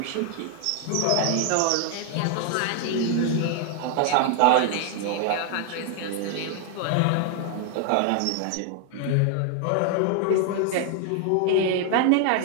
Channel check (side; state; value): both; different; correlation 0.00